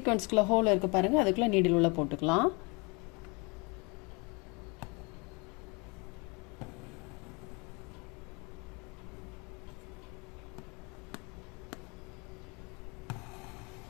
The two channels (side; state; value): right; quieter; 29.7 dB